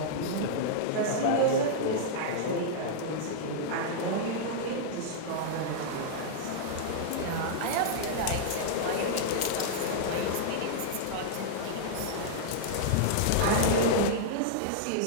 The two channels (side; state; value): both; different; correlation -0.02